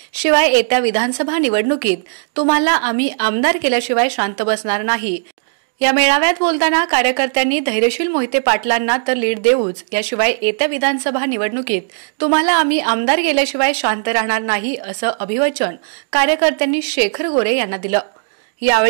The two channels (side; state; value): left; silent; digital silence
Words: शिवाय येत्या विधानसभा निवडणुकीत तुम्हाला आम्ही आमदार केल्याशिवाय शांत बसणार नाही. या मेळाव्यात बोलताना कार्यकर्त्यांनी धैर्यशील मोहिते पाटलांना तर लीड देऊच, याशिवाय येत्या विधानसभा निवडणुकीत तुम्हाला आम्ही आमदार केल्याशिवाय शांत राहणार नाही असं अभिवचन कार्यकर्त्यांनी शेखर गोरे यांना दिलं.